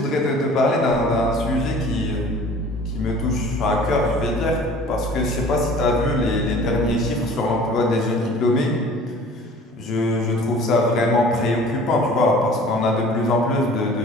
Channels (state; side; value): normal; both; correlation 0.47